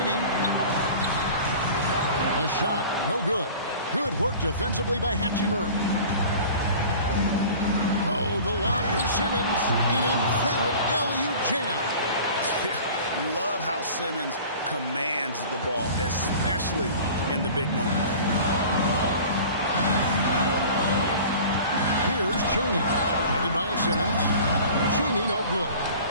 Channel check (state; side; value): inverted; both; correlation -0.42